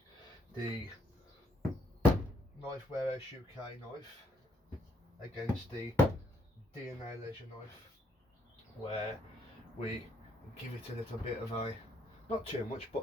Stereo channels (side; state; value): both; normal; correlation 0.72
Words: the Knifewarehouseuk knife against the DNALEISURE knife, where we give it a little bit of a, not too much,